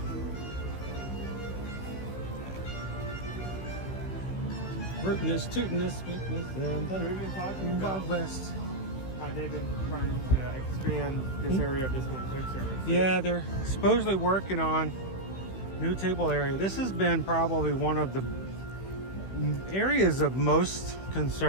Rootiness, tootiness, sweetness, and the Wild West. How they've been trying to expand this area of this one food service. Yeah, they're supposedly working on new table area. This has been probably one of the areas of most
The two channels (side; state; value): right; late; 16 ms